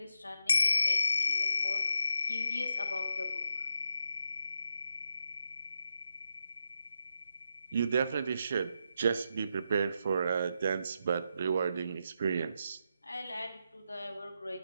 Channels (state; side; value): inverted; both; correlation -0.82